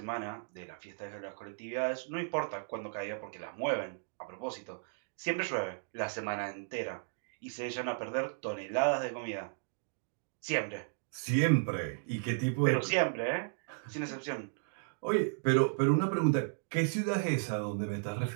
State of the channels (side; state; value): left; silent; digital silence